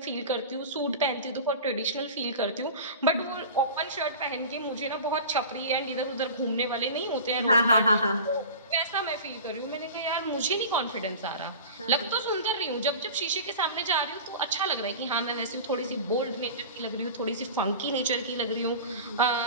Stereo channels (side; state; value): both; inverted; correlation -0.35